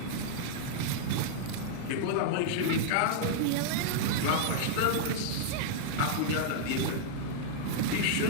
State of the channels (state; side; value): different; both; correlation -0.01